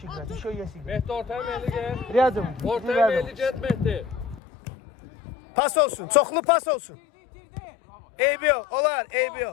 играть, еще есть игра. Mehdi ortaya meyli gel. Rядом, Ortaya meyli get Mehdi. Pas olsun, çoxlu pas olsun. Eybi yox, olar, eybi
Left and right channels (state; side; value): drops out; right; at 4.4 s